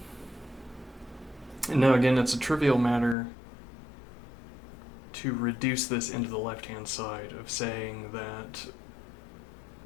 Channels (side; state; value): right; drops out; at 3.2 s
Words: And now again, it's a trivial matter to reduce this into the left-hand side of saying that